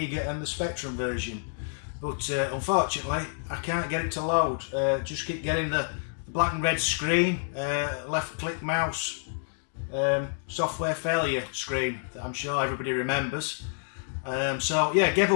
and the Spectrum version, but unfortunately I can't get it to load. Just keep getting the black and red screen, left click mouse, software failure screen that I'm sure everybody remembers. So yeah, gave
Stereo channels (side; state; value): right; silent; digital silence